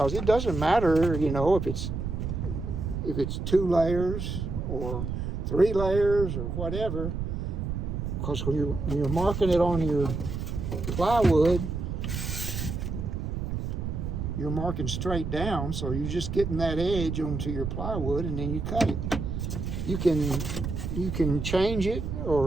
it doesn't matter, you know, if it's 2 layers or 3 layers or whatever, because when you're marking it on your plywood, you're marking straight down, so you're just getting that edge onto your plywood, and then you cut it. You can change it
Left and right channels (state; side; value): noise; right; rumble, 3 dB below the sound